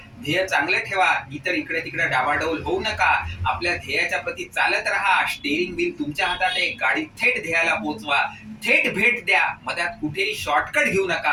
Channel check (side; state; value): both; identical; correlation 1.00